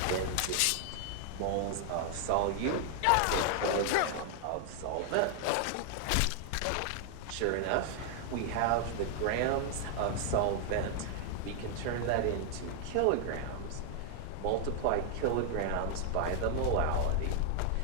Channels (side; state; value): both; different; correlation 0.00